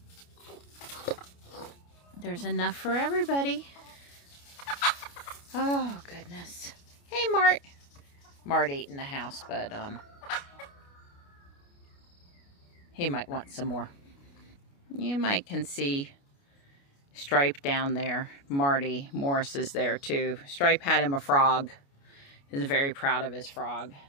There's enough for everybody. Oh, goodness. Hey, Mart. Mart ate in the house, but he might want some more. You might can see Stripe down there. Marty Morris is there too. Stripe had him a frog. He's very proud of his frog.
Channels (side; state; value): right; late; 29 ms